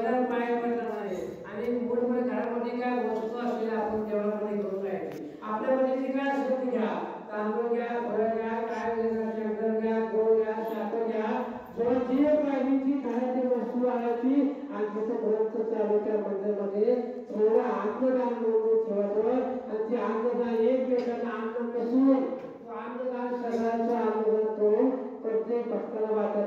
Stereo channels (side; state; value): both; identical; correlation 1.00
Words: पाया पडला नाही आणि मूळमुळे घरामध्ये काय वस्तू असलेल्या आपण देवळामध्ये घेऊन जायची आपल्यामध्ये जे काय असेल ते घ्या तांदूळ घ्या फळं घ्या काय शंकर घ्या गोळ घ्या साखर घ्या जो जे पाहिजे खाण्याची वस्तू आणायची आणि तिथं ग्रंथ चालू त्या मंदिरामध्ये थोडं अन्नदान म्हणून ठेवायचं आणि ते अन्नदान एकमेकांना अन्न नसून तो अन्नदान सगळ्यांचं अन्नदान करून प्रत्येक भक्ताला